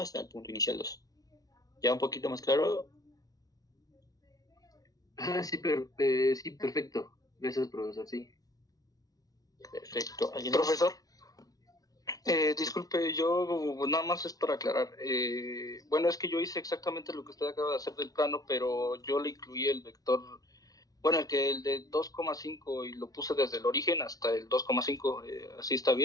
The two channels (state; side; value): late; right; 0.18 ms